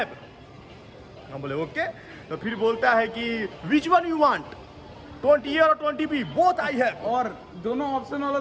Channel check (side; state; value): both; identical; correlation 1.00